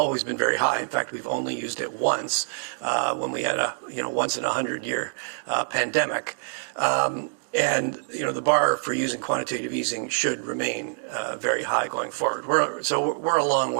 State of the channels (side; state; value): left; silent; digital silence